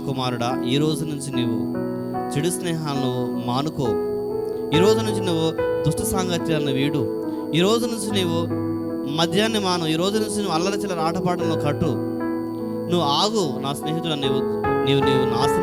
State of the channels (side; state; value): both; identical; correlation 1.00